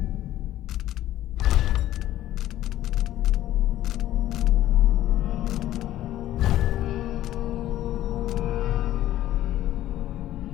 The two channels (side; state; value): right; quieter; 13.6 dB